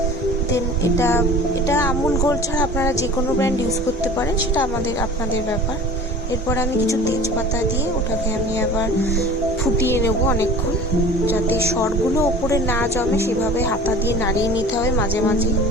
দেন এটা আমুল গোল্ড ছাড়া আপনারা যে কোনো ব্র্যান্ড ইউজ করতে পারেন, সেটা আপনাদের ব্যাপার। এরপর আমি কিছু তেজপাতা দিয়ে ওটাকে আমি আবার ফুটিয়ে নেব অনেকক্ষণ, যাতে সরগুলো ওপরে না জমে সেভাবে হাতা দিয়ে নাড়িয়ে নিতে হবে মাঝে মাঝে।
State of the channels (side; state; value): both; normal; correlation 0.41